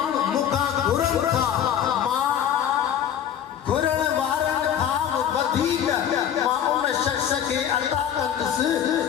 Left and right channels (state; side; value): quieter; right; 9.5 dB